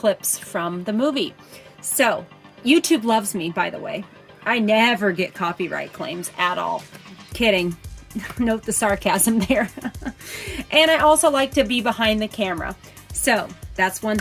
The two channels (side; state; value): both; identical; correlation 1.00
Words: from the movie. So YouTube loves me, by the way. I never get copyright claims at all. Kidding. Note the sarcasm there. And I also like to be behind the camera. So that's one